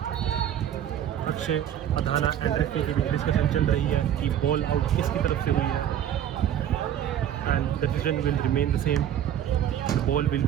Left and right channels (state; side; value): quieter; left; 10.3 dB